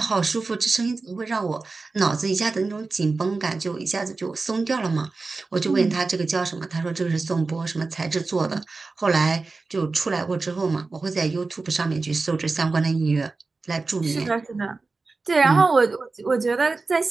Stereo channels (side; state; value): left; quieter; 3.8 dB